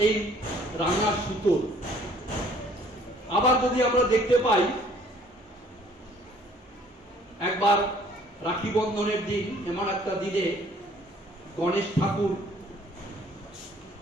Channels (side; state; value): both; normal; correlation 0.58